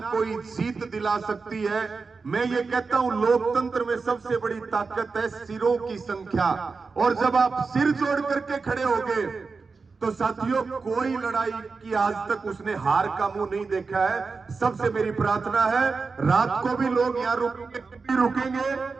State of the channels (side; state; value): left; quieter; 4.5 dB